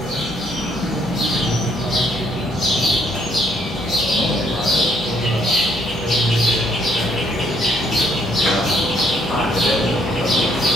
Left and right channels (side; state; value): left; noise; hum, 17 dB below the sound